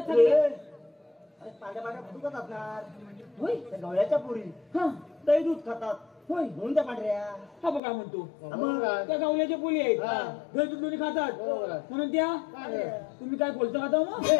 पांड्या फुटूकच असणार होय त्या गवळ्याच्या पुरी दही दूध खातात होय म्हणून त्या पांढऱ्या हा बघ काय म्हणतो त्या गावल्याच्या पुली आहेत दही दूध दोन्ही खातात म्हणून त्या तुम्ही काय बोलता खाता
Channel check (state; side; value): drops out; right; at 7.8 s